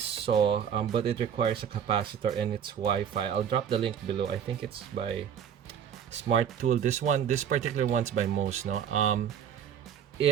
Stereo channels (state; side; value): quieter; left; 8.5 dB